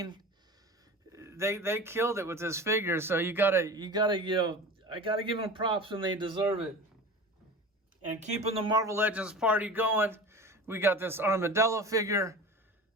they killed it with this figure. So I gotta give them props when they deserve it. And keeping the Marvel Legends party going, we got this Armadillo figure.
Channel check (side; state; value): both; normal; correlation 0.34